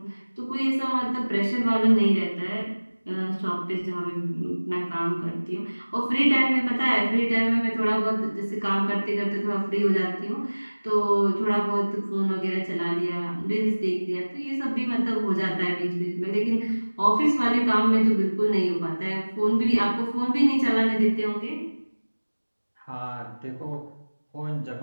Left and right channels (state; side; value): inverted; both; correlation -1.00